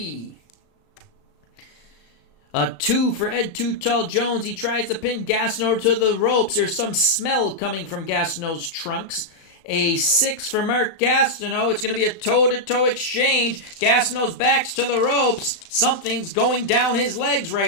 A 2 for Ed Too Tall Jones. He tries to pin Gastineau to the ropes. There's some smell coming from Gastineau's trunks. A 6 for Mark Gastineau. It's going to be a toe-to-toe exchange. Gastineau's back's to the ropes. Something's going down his legs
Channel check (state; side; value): late; right; 35 ms